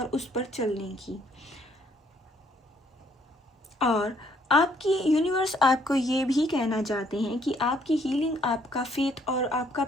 उस पर चलने की। और आपकी यूनिवर्स आपको ये भी कहना चाहते हैं कि आपकी हीलिंग, आपका फेथ और आपका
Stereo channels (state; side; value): normal; both; correlation 0.66